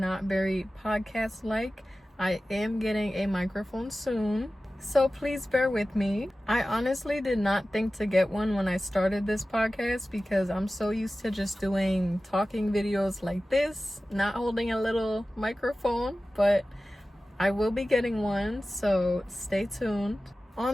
very podcast-like. I am getting a microphone soon, so please bear with me. I honestly did not think to get one when I started this podcast because I'm so used to just doing talking videos like this, not holding a little microphone, but I will be getting one, so stay tuned.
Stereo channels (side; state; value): both; normal; correlation 0.96